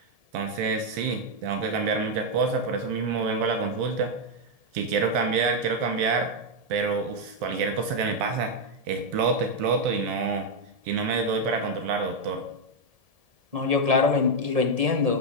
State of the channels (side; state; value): left; late; 1.7 ms